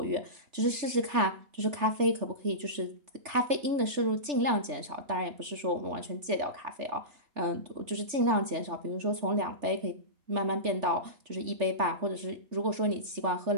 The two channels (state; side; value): late; left; 3.4 ms